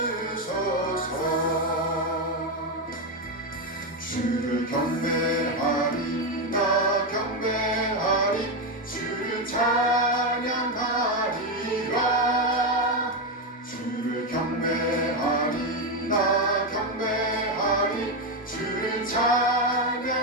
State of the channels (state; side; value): normal; both; correlation 0.08